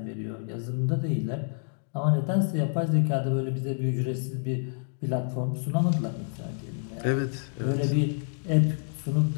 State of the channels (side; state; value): right; silent; 59 dB below the other